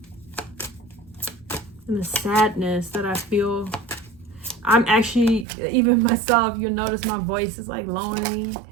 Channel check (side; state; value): left; drops out; at 5.5 s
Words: and the sadness that I feel. I'm actually, even myself, you'll notice my voice is like lowering